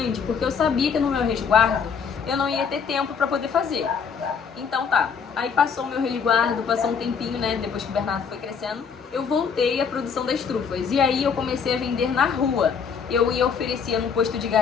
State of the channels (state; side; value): quieter; right; 6.3 dB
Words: porque eu sabia que no meu resguardo eu não ia ter tempo para poder fazer. Então tá, aí passou o meu resguardo, passou um tempinho, né, depois que o Bernardo foi crescendo, eu voltei à produção das trufas. E aí eu comecei a vender na rua. Eu ia oferecer no posto de